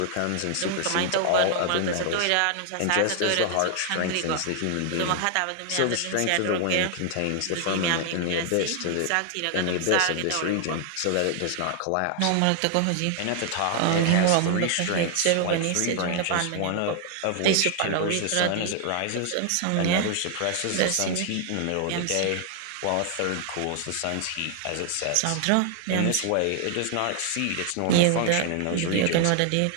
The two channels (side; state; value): both; different; correlation 0.00